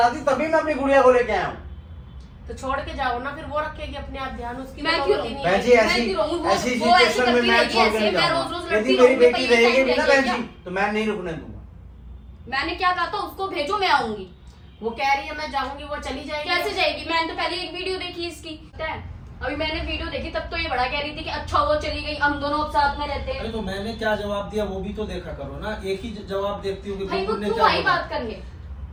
थी तभी मैं अपनी गुड़िया को लेके आया हूँ। तो छोड़ के जाओ ना, फिर वो रखेगी अपने आप ध्यान, उसकी मैं तो क्यों नौबत ही नहीं बहन है। जी ऐसी मैं क्यों रहूं? वो ऐसी ऐसी सिचुएशन में करती मैं रहेगी, छोड़ के ऐसे नहीं मैं जाऊंगा। रोज-रोज यदि लड़ती मेरी रहूंगी, बेटी पर ये रहेगी टाइम ना रहेगी बहन जी, क्या? तो मैं नहीं रुकने दूंगा। मैंने क्या कहा था उसको भेजो, मैं आऊंगी। वो कह रही है मैं जाऊंगी, वो चली जाएगी। कैसे जाएगी? मैंने तो पहले एक वीडियो देखी इसकी, पता है? अभी मैंने वीडियो देखी तब तो ये बड़ा कह रही थी कि अच्छा वो चली गई, हम दोनों अब साथ में रहते अरे हैं। तो मैंने क्या जवाब दिया वो भी तो देखा करो ना, एक ही जवाब देखती हूँ कि भाई वो बुलबुल ने क्यों क्या आई बोला। बात करने?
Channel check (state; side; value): identical; both; correlation 1.00